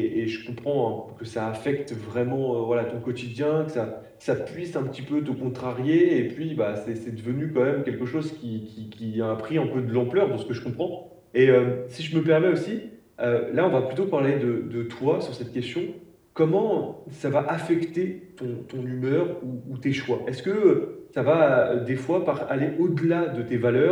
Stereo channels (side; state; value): both; identical; correlation 1.00